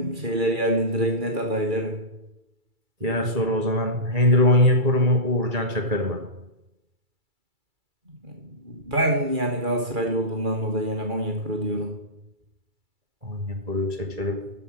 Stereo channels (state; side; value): late; left; 2.3 ms